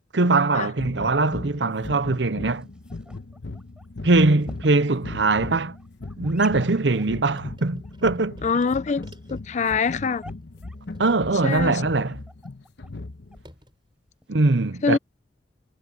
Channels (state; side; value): normal; both; correlation 0.28